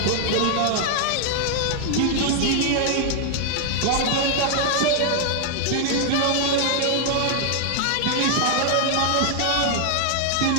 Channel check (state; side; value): different; both; correlation 0.00